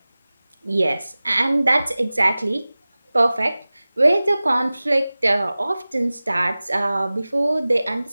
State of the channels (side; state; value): both; inverted; correlation -0.98